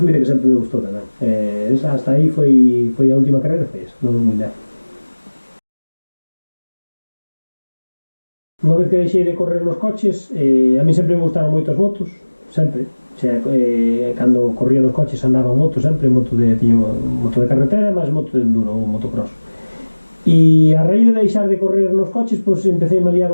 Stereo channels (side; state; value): both; inverted; correlation -1.00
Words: que sempre me gustou tamén. Hasta aí foi a última carreira, foi esa, non moi leve. Unha vez que deixei de correr nos coches, a mí sempre me gustaron moito as motos, sempre. Cando corría nos coches andaba en moto sempre, tiño moto de carretera, máis moto de enduro ou motocross. E a raíz de deixar de correr nos coches, pois empecé a liar